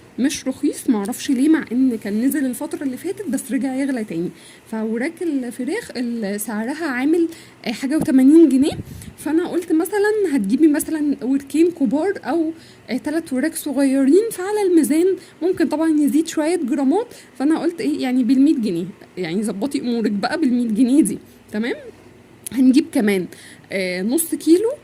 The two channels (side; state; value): both; identical; correlation 1.00